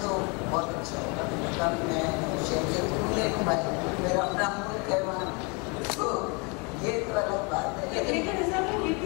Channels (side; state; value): right; quieter; 31.5 dB